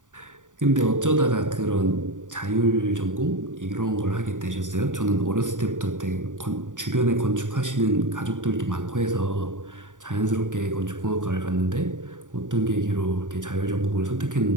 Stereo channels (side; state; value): left; late; 0.87 ms